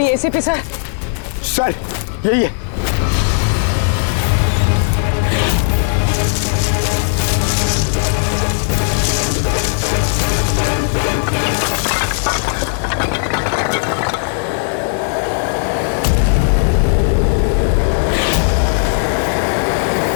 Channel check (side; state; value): right; silent; 56 dB below the other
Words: एसीपी सर? सर यही है।